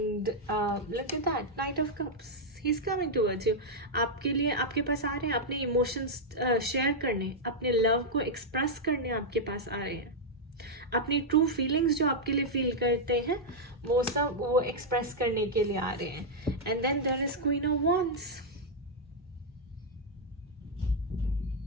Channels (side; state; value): both; normal; correlation -0.03